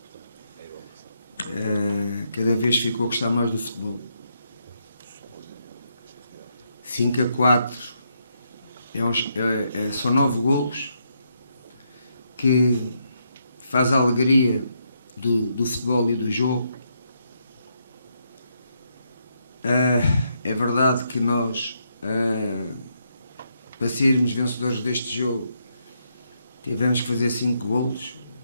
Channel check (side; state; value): both; inverted; correlation -0.78